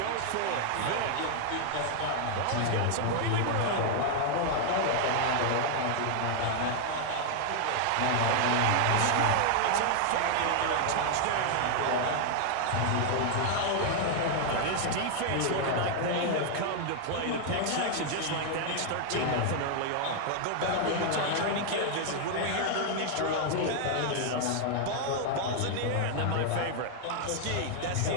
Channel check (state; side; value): different; both; correlation 0.00